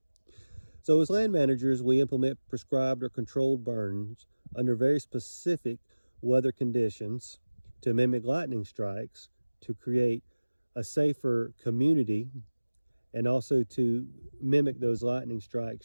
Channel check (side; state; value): both; inverted; correlation -1.00